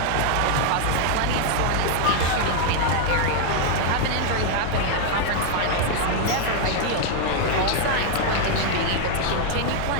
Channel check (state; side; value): different; both; correlation 0.00